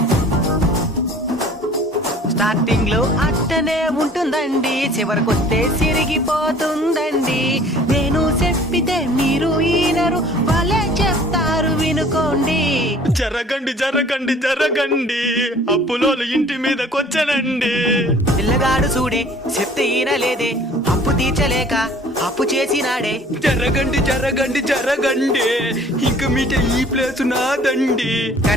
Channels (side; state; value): both; normal; correlation 0.51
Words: స్టార్టింగ్ లో అట్టనే ఉంటుందండి, చివరికొస్తే సిరిగిపోతుందండి. నేను చెప్పితే మీరు ఈనరు, వాళ్ళే చెప్తారు వినుకోండి. జరగండి జరగండి జరగండి అప్పులోలు ఇంటి మీదకొచ్చనండి. పిల్లగాడు చూడే చెప్తే ఈనలేదే, అప్పు తీర్చలేక అప్పు చేసినాడే. జరగండి జరగండి జరగండి ఇంక మీట ఈ ప్లేసు నాదండి.